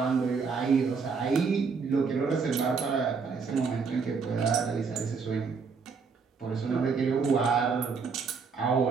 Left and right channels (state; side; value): quieter; left; 5.3 dB